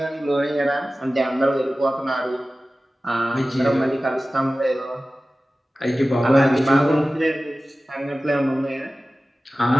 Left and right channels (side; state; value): both; normal; correlation 0.96